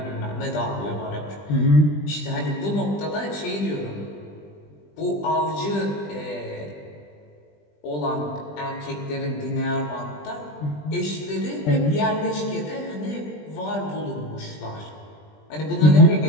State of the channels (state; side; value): late; right; 20 ms